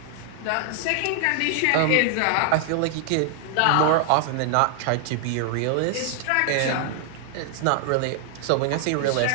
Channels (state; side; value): different; both; correlation 0.00